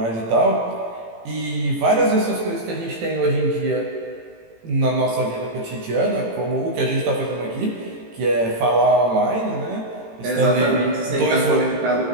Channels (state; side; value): late; left; 18 ms